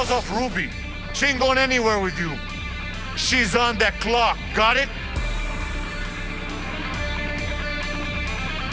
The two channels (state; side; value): identical; both; correlation 1.00